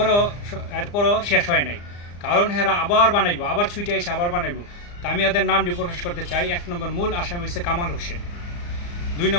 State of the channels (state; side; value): late; right; 34 ms